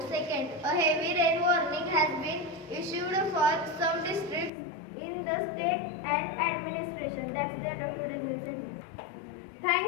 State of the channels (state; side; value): drops out; right; at 4.5 s